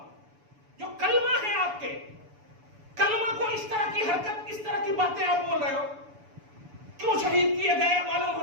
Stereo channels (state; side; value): late; left; 6.9 ms